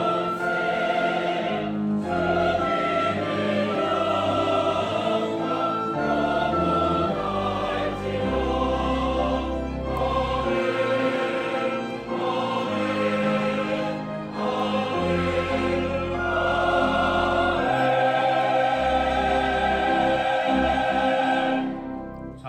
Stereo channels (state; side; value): identical; both; correlation 1.00